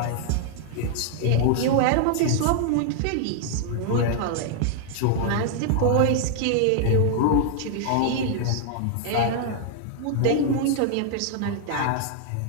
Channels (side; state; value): both; different; correlation 0.00